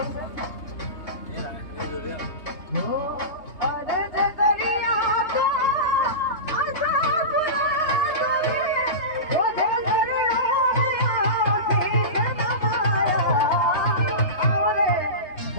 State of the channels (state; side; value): late; right; 3.3 ms